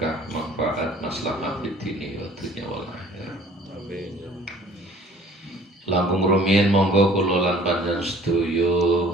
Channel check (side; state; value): both; normal; correlation 0.52